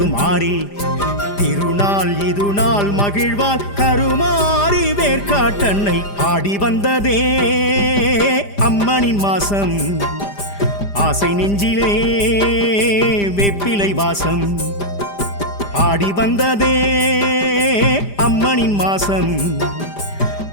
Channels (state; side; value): late; right; 5.0 ms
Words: திருநாள் இது நாள் மகிழ்வாள் கருமாரி வேர்க்காட்டன்னை. ஆடி வந்ததே அம்மனின் மாசம், ஆசை நெஞ்சிலே வேப்பிலை வாசம். ஆடி வந்ததே அம்மனின் மாசம்,